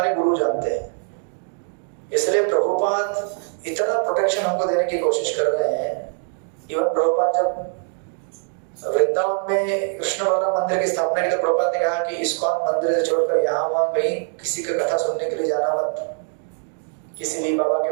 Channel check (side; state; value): left; silent; 58 dB below the other